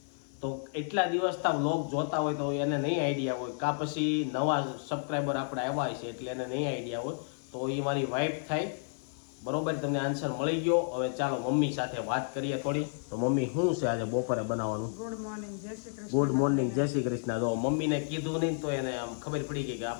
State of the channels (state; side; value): silent; right; digital silence